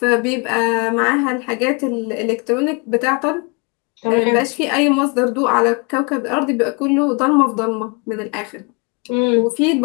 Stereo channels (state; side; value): quieter; right; 31.8 dB